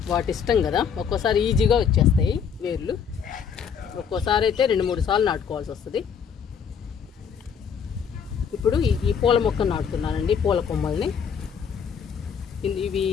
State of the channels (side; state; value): right; quieter; 7.1 dB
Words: వాటి ఇష్టం కదా. ఒక్కోసారి ఈజీగా వచ్చేస్తాయి వేర్లు, ఒక్కోసారి అయితే 2-3 సార్లు నాటుకోవాల్సి వస్తుంది. ఇప్పుడు ఈ పూల మొక్కను నాటుతున్నానండి, పూల కొమ్మల్ని. ఇవి